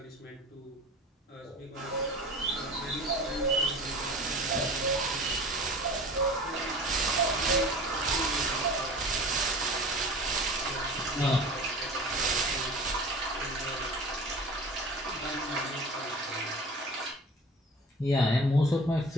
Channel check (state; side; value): normal; both; correlation 0.39